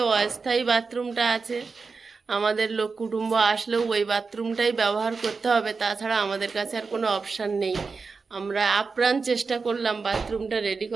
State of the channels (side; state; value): left; quieter; 4.6 dB